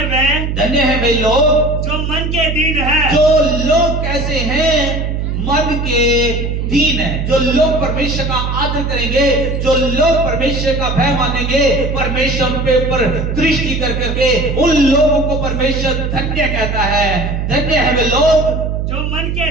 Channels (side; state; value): right; noise; hum, 2 dB below the sound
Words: है वे लोग जो मन के दीन है। जो लोग कैसे हैं, मन के दीन है, जो लोग परमेश्वर का आदर करेंगे, जो लोग परमेश्वर का भय मानेंगे, परमेश्वर पे ऊपर दृष्टि कर करके उन लोगों को परमेश्वर धन्य कहता है। धन्य है वे लोग जो मन के